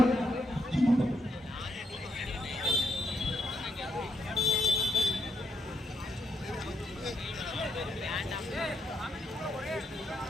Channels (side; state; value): both; normal; correlation 0.78